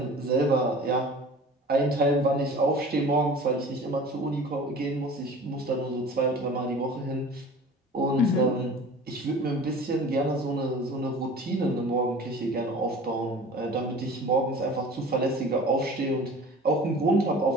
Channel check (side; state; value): both; normal; correlation 0.42